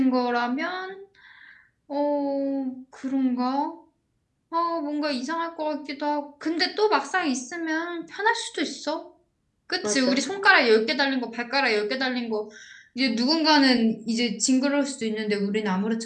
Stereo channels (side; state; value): both; identical; correlation 1.00